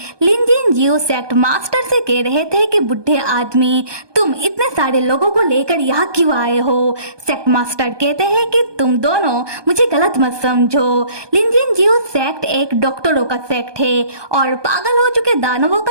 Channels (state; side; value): late; left; 1.2 ms